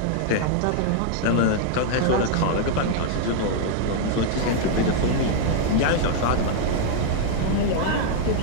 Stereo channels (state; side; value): different; both; correlation 0.00